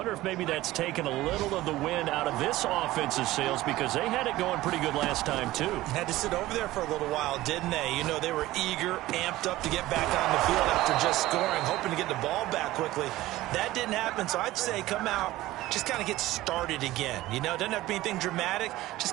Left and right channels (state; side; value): quieter; left; 16.9 dB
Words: if maybe that's taken a little of the wind out of this offense's sails because they had it going pretty good last time, too. Had to sit over there for a little while, didn't they? You know, they were eager, amped up to get back on the field after just scoring, hoping to get the ball back quickly. That didn't happen, so I'd say come out, just kind of get started again. You know, doesn't have to be anything dramatic.